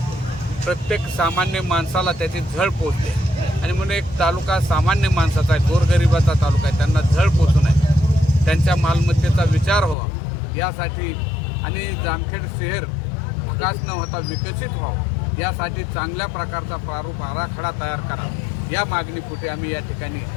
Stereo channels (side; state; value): right; drops out; at 10.0 s